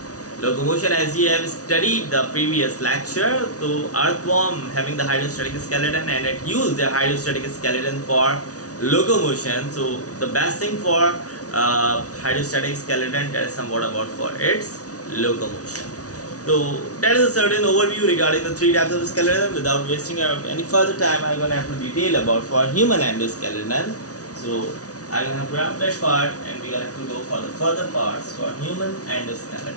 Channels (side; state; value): right; late; 0.68 ms